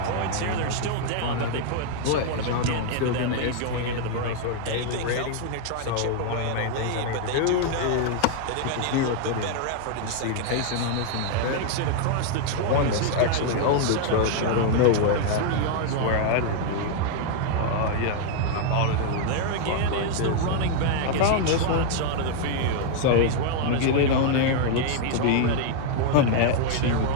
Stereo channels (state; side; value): different; both; correlation 0.00